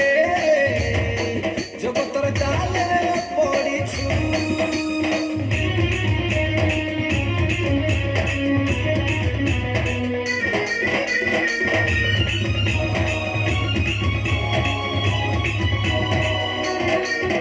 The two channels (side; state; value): both; identical; correlation 1.00